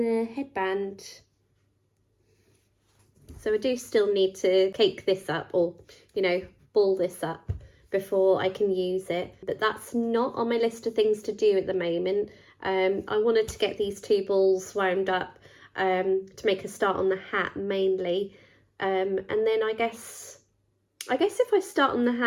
headband. So I do still need to cake this up, or, you know, ball this up before I can use it. But that's not on my list of things to do at the moment. I wanted to get these 2 balls wound up to make a start on the hat mainly. And then I guess if I start on the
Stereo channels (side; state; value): both; identical; correlation 1.00